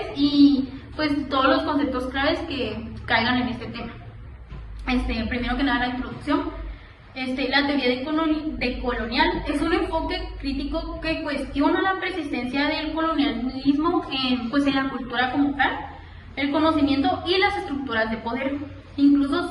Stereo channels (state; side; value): identical; both; correlation 1.00